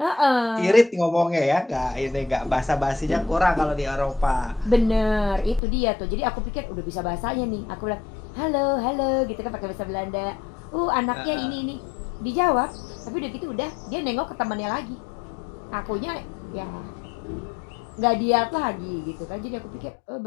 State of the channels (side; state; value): right; drops out; at 5.6 s